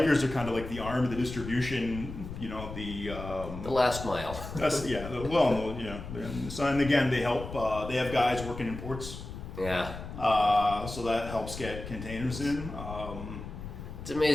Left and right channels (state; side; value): noise; left; rumble, 10 dB below the sound